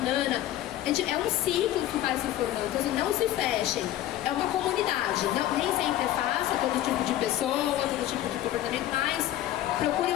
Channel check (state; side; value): quieter; right; 13.3 dB